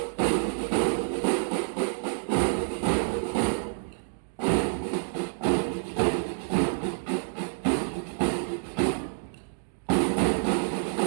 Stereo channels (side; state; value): left; silent; digital silence